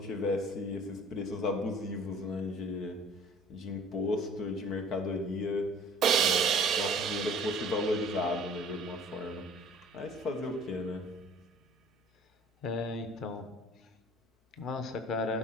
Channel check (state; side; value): normal; both; correlation 0.50